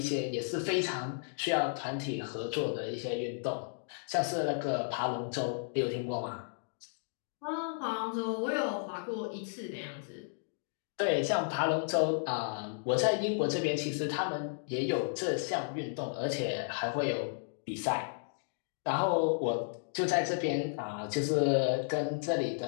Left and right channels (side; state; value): right; silent; digital silence